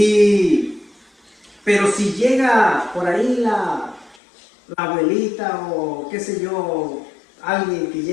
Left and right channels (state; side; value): drops out; right; at 4.2 s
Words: Pero si llega por ahí la abuelita o qué sé yo, alguien que